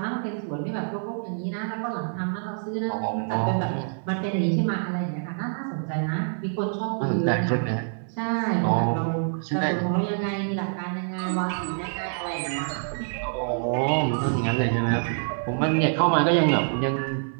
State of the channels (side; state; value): left; silent; digital silence